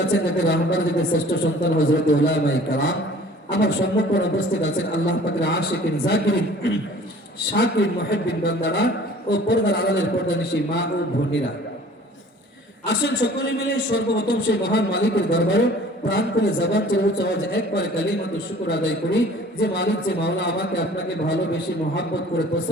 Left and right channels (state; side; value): normal; both; correlation 0.49